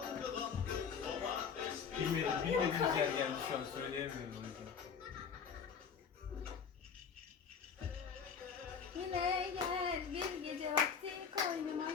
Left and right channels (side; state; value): right; quieter; 6.6 dB